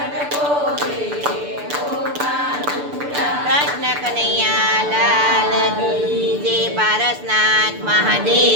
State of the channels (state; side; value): late; left; 6.8 ms